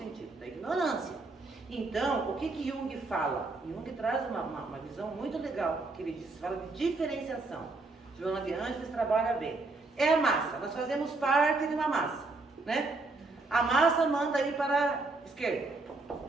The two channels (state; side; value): quieter; left; 3.4 dB